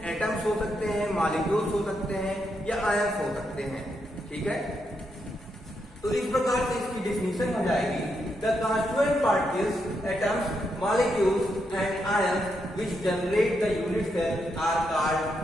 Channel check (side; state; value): both; normal; correlation 0.81